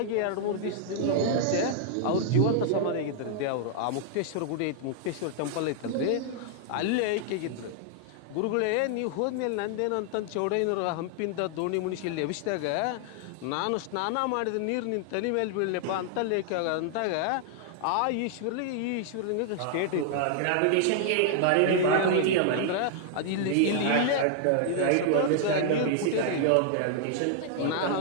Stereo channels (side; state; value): both; different; correlation -0.01